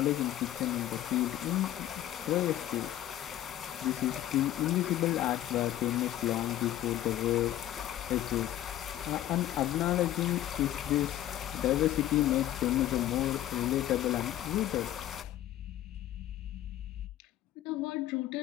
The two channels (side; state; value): right; quieter; 13.1 dB